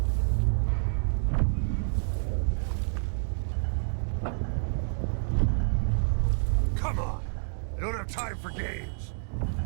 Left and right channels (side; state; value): left; silent; digital silence